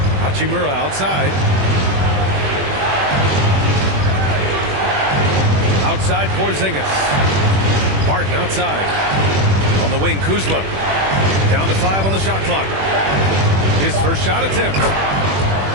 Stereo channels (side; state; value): left; late; 21 ms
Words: Hachimura outside. Outside Porzingis. Barton outside. On the wing, Kuzma. Down to 5 on the shot clock. His first shot attempt.